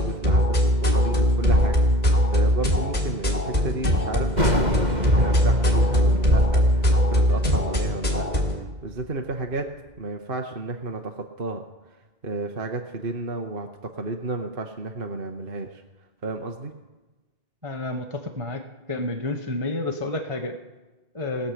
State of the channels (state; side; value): late; left; 2.1 ms